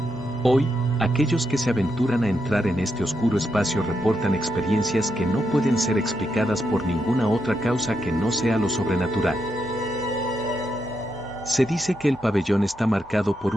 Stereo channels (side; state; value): both; normal; correlation 0.82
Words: Hoy, aquellos que se aventuran a entrar en este oscuro espacio reportan experiencias que no pueden ser explicadas por ninguna otra causa que no sea lo sobrenatural. Se dice que el pabellón está marcado por